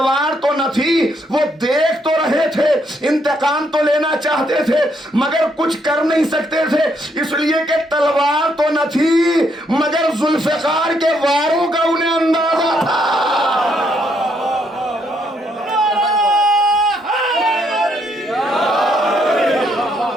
تو نہ تھی, وہ دیکھ تو رہے تھے, انتقام تو لینا چاہتے تھے, مگر کچھ کر نہیں سکتے تھے, اس لیے کہ تلوار تو نہ تھی, مگر ذوالفقار کے واروں کا انہیں اندازہ تھا.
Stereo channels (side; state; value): both; normal; correlation 0.73